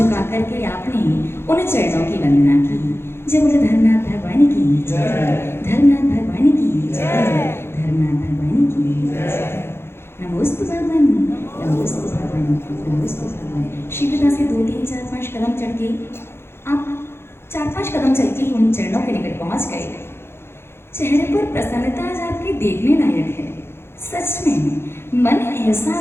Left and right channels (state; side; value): late; right; 0.12 ms